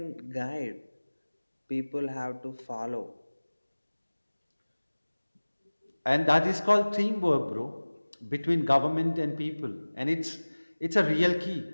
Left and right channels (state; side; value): inverted; both; correlation -1.00